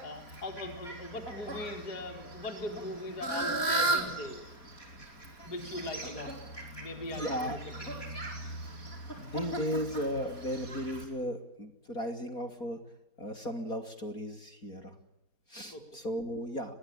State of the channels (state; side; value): late; right; 4.1 ms